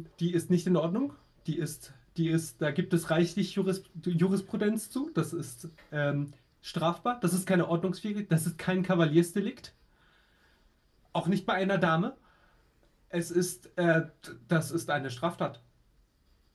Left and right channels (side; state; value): both; identical; correlation 1.00